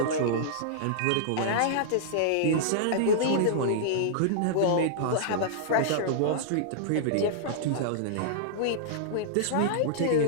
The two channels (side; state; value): both; different; correlation -0.02